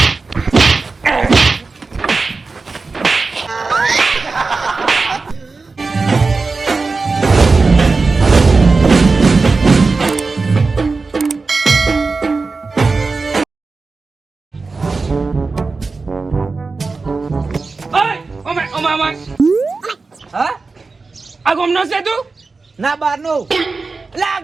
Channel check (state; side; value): quieter; left; 4.1 dB